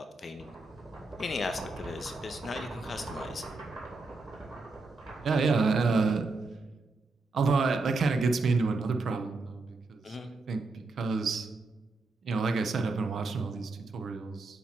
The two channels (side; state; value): left; quieter; 3.5 dB